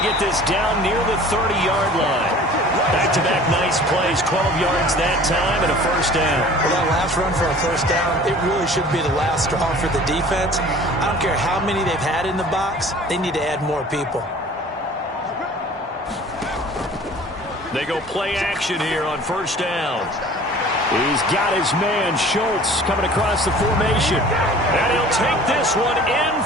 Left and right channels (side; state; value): both; normal; correlation 0.46